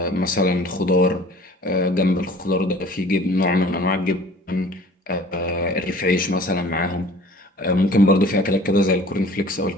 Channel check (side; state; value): both; normal; correlation 0.49